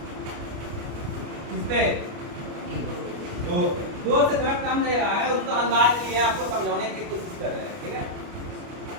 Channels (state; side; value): late; left; 29 ms